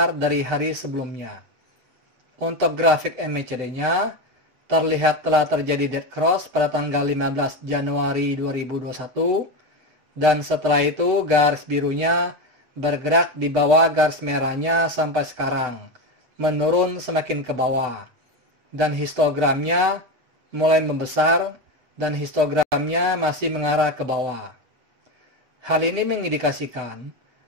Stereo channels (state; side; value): late; left; 7.9 ms